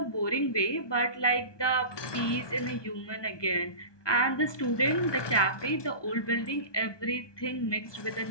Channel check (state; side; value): late; right; 1.2 ms